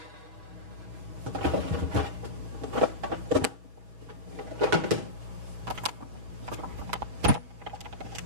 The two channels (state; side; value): late; left; 5.7 ms